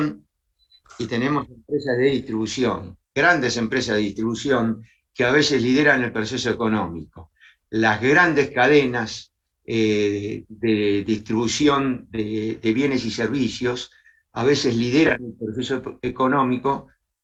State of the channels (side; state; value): both; identical; correlation 1.00